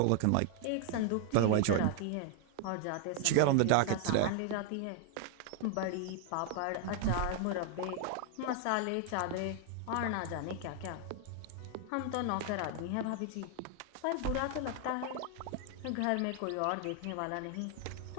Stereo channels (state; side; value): different; both; correlation 0.00